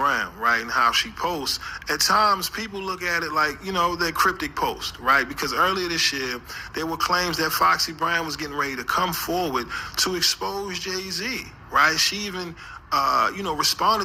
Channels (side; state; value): both; identical; correlation 1.00